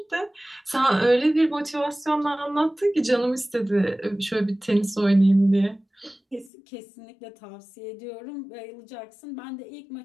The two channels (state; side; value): drops out; right; at 6.5 s